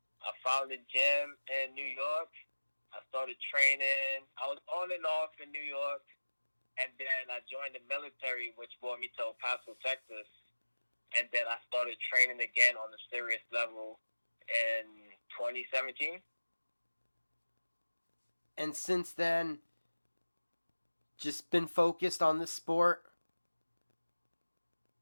I found a gym in New York. I started training. I was on and off in New York, and then I joined the military, which brought me to El Paso, Texas. And then I started training again on a serious level in 2017. And since then, just been focused on this sport?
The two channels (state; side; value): inverted; both; correlation -1.00